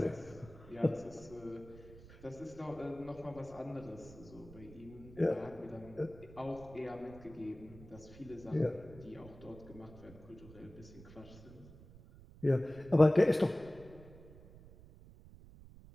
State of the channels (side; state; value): right; noise; rumble, 18 dB below the sound